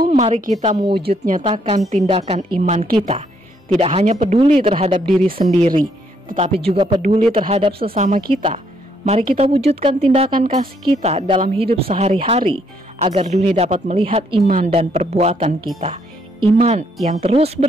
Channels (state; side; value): normal; both; correlation 0.71